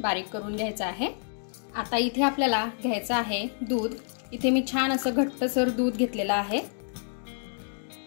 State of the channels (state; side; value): silent; right; digital silence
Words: करून घ्यायचं आहे। आता इथे आपल्याला घ्यायचं आहे दूध। इथे मी छान असं घट्टसर दूध घेतलेलं आहे।